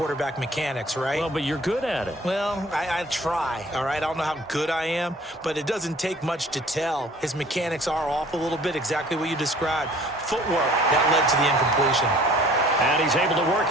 mechanics, right? Well, but you're good at it. Well, I try, all right? I don't know how good I am, but it doesn't take much to tell. His mechanics are off a little bit, exactly what you described. Footwork, that led to the incompletion. And he's able to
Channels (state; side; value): normal; both; correlation 0.52